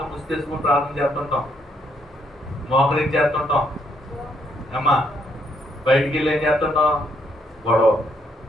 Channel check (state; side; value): normal; both; correlation 0.73